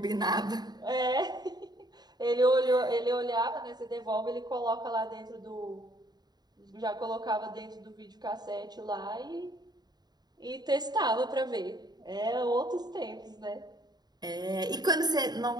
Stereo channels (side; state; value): left; late; 0.20 ms